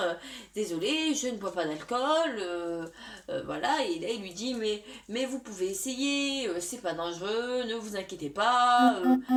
désolé je ne bois pas d'alcool, voilà. Et là il lui dit mais vous pouvez essayer, c'est pas dangereux, ne vous inquiétez pas,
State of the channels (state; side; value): identical; both; correlation 1.00